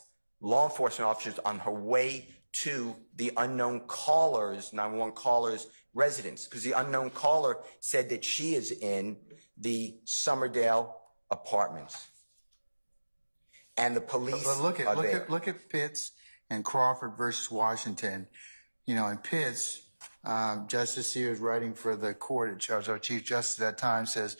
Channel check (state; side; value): inverted; both; correlation -1.00